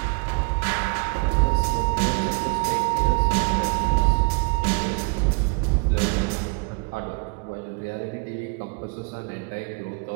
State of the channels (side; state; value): left; quieter; 35.1 dB